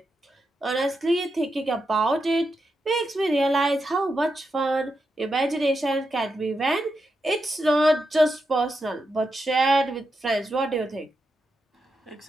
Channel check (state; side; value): normal; both; correlation 0.86